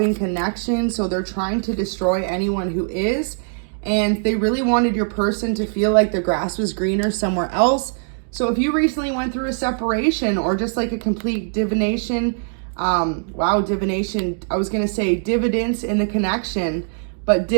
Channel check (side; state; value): left; silent; digital silence